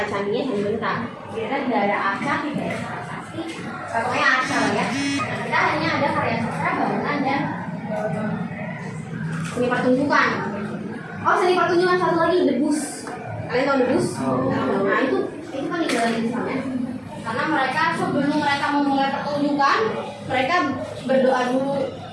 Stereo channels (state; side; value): identical; both; correlation 1.00